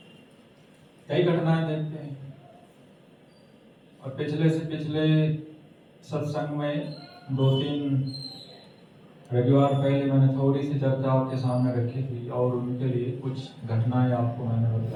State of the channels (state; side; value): identical; both; correlation 1.00